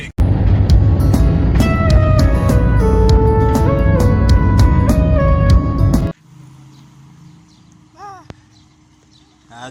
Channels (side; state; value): both; identical; correlation 1.00